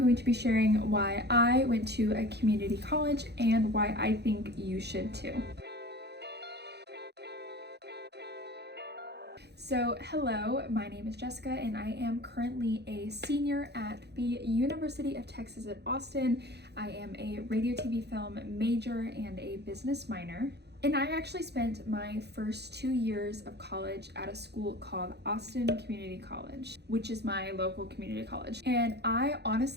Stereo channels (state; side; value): late; left; 0.48 ms